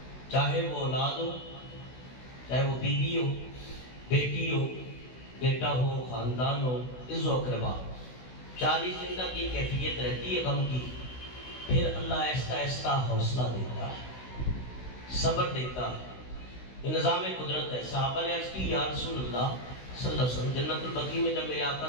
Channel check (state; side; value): late; right; 16 ms